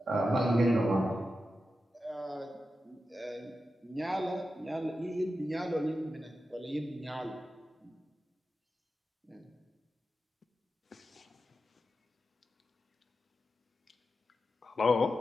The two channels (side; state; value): both; normal; correlation 0.90